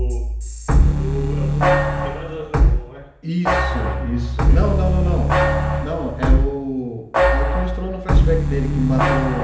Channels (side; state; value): both; identical; correlation 1.00